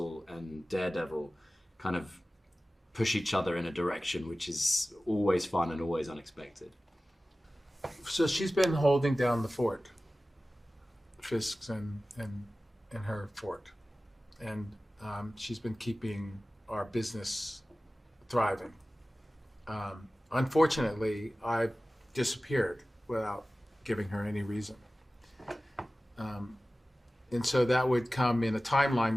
and Daredevil kind of push each other in a direction which is always fun and always unexpected. So she's been holding down the fort, Fisk's and her fort, and she's been keeping our business thriving. Unfortunately, I disappeared without giving her any reason, and so that would come in a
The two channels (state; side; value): normal; both; correlation 0.96